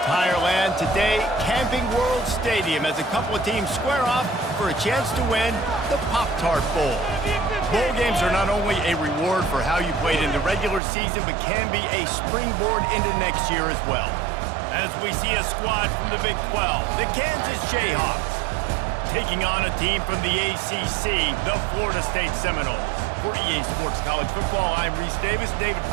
land. Today, Camping World Stadium as a couple of teams square off for a chance to win the POPTart Bowl. Bowl games are not only a reward for how you played in the regular season, but can be a springboard into next year as well. As we see a squad from the Big 12, the Kansas Jayhawks, taking on a team from the ACC, the Florida State Seminoles. For EA Sports College Football, I'm Reese Davis, David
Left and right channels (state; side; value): drops out; left; at 10.8 s